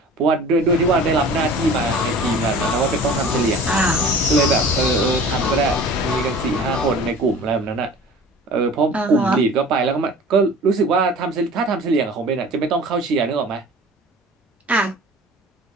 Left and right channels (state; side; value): normal; both; correlation 0.42